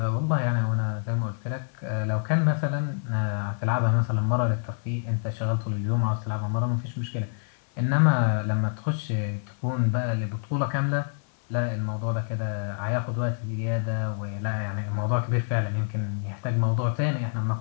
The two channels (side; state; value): right; silent; 60 dB below the other